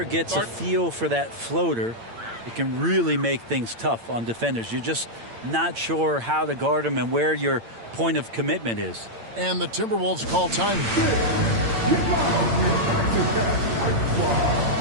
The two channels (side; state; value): left; late; 8.8 ms